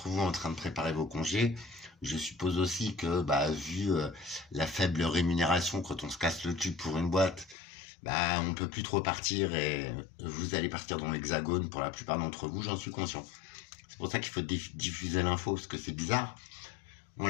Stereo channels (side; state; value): right; drops out; at 7.6 s